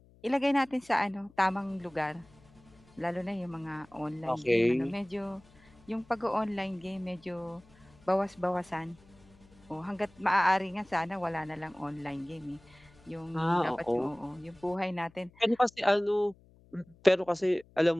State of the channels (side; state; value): left; noise; hum, 27 dB below the sound